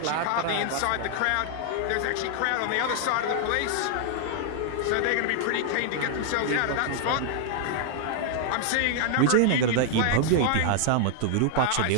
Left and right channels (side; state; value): both; different; correlation -0.01